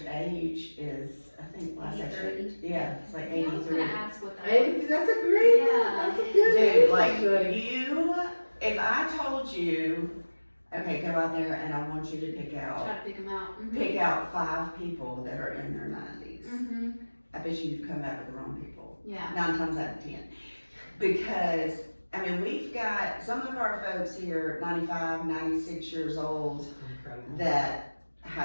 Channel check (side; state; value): both; inverted; correlation -1.00